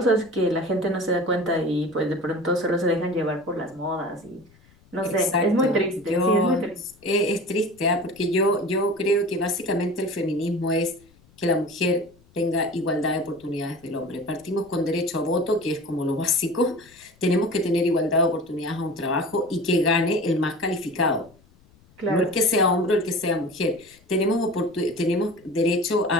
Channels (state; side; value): noise; left; rumble, 29 dB below the sound